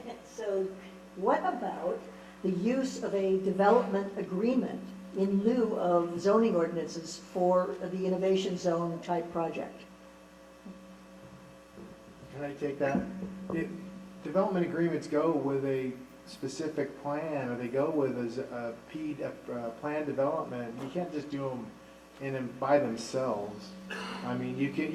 so what about the use of a development agreement in lieu of zoning ordinances for the innovation zone type project? Can I take that? Development agreements go with a specific plan, or they go with a plan development. You can't just do them by themselves. I mean,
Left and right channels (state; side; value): identical; both; correlation 1.00